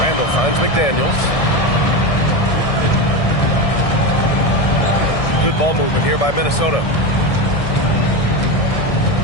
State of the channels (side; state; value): right; late; 1.6 ms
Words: Randall finds McDaniels. Good ball movement here by Minnesota.